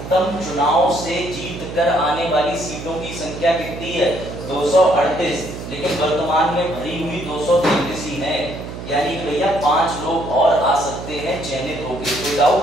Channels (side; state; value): right; noise; hum, 10 dB below the sound